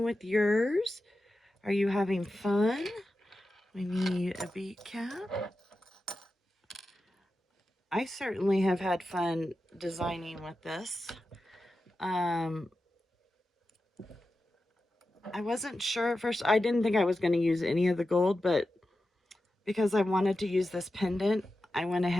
with yours? Are you having fun? We need a bead cap. I certainly have had fun designing with this. I wasn't sure at first. I didn't think I was going to use any of the gold, but because I wanted to use this pendant, I went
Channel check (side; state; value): both; normal; correlation 0.91